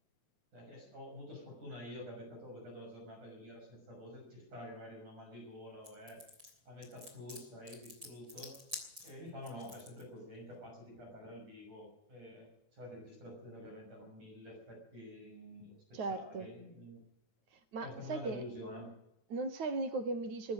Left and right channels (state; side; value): late; left; 6.6 ms